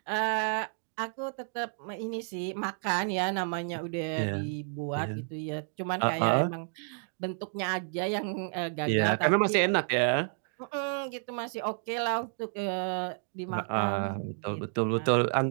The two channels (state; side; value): silent; left; 57 dB below the other